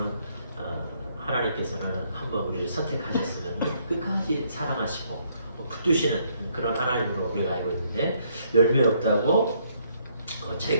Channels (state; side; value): inverted; both; correlation -0.69